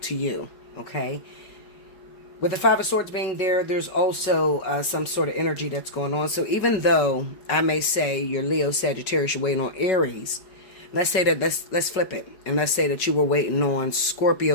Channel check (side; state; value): right; late; 5.3 ms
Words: to you, okay? With the Five of Swords being there, there's also some sort of energy that's going on. So even though I may say you're Leo, Sagittarius, you're waiting on Aries, let's say that, let's flip it, and let's say that you were waiting on